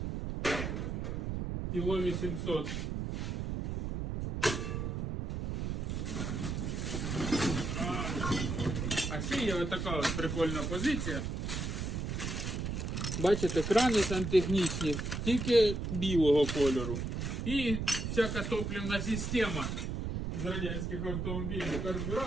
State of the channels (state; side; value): noise; right; rumble, 3 dB below the sound